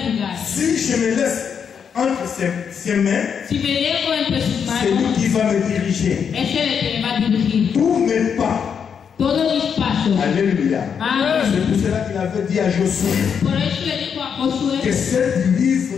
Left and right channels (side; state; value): right; quieter; 7.1 dB